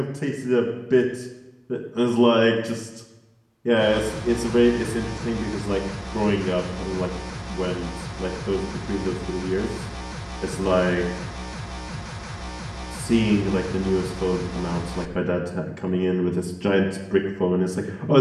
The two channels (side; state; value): both; identical; correlation 1.00